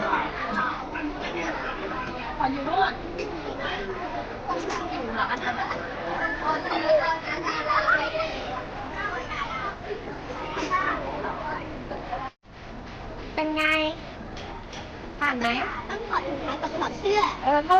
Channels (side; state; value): both; identical; correlation 1.00